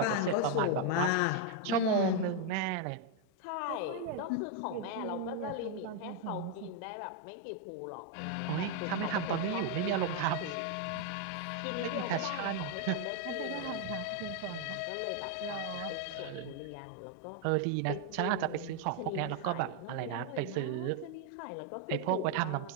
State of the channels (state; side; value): different; both; correlation 0.01